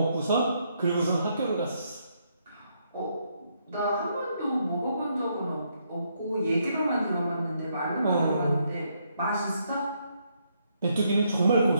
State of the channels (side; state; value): both; inverted; correlation -0.75